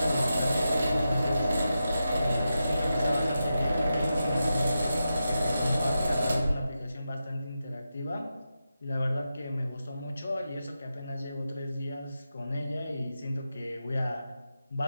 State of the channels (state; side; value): inverted; both; correlation -0.89